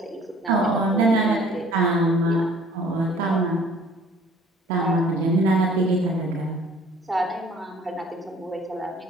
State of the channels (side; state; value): both; normal; correlation 0.53